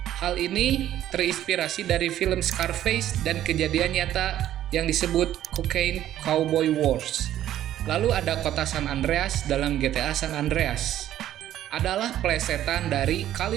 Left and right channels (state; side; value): quieter; left; 12.2 dB